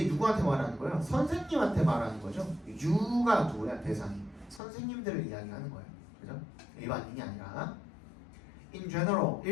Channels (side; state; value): right; drops out; at 4.6 s